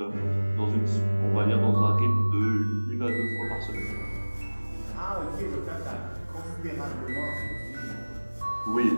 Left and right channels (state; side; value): inverted; both; correlation -1.00